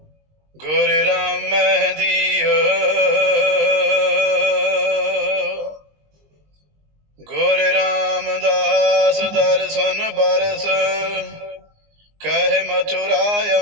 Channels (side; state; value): left; late; 19 ms